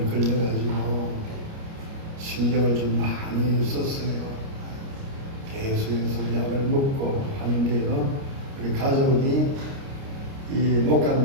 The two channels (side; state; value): left; late; 29 ms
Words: 걸려가지고 신경을 좀 많이 썼어요. 계속해서 약을 먹고 하는데요. 우리 가족이 이 목